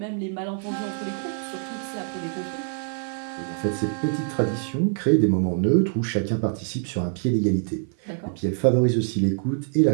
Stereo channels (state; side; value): silent; left; 56 dB below the other